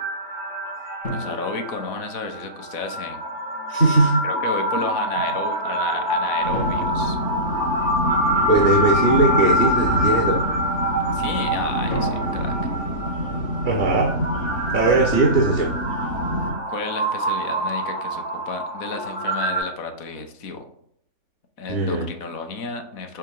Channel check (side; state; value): right; late; 3.5 ms